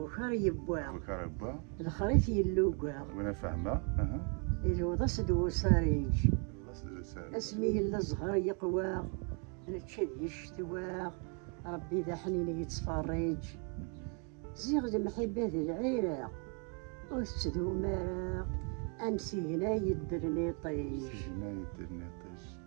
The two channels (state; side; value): quieter; left; 38.8 dB